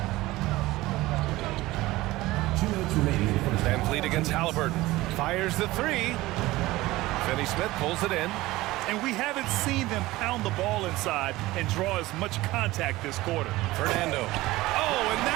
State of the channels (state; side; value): quieter; left; 18.5 dB